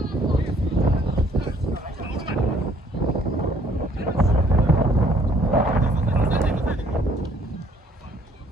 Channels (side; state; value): both; normal; correlation 0.62